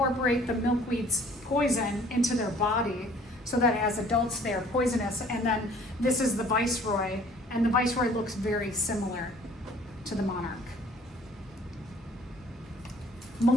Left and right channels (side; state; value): both; normal; correlation 0.54